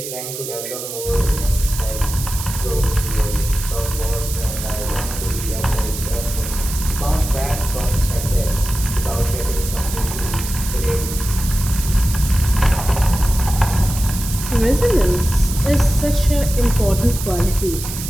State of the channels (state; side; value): noise; right; hiss, 8 dB below the sound